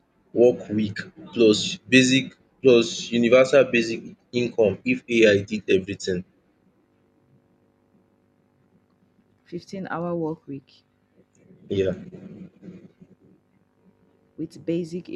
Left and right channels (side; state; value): both; identical; correlation 1.00